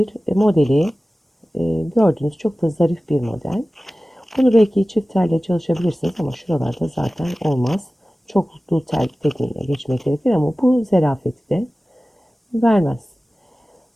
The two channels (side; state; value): both; normal; correlation 0.97